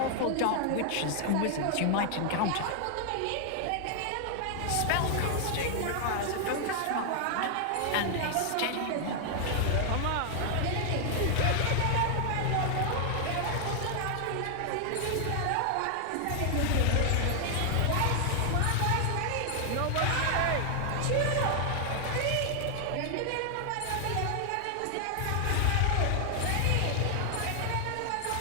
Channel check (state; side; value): different; both; correlation 0.00